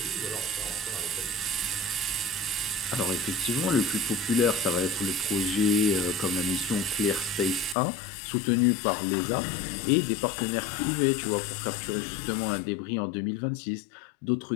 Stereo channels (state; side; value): drops out; right; at 7.8 s